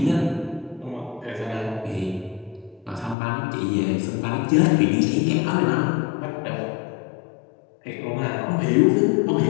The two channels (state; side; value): drops out; right; at 3.2 s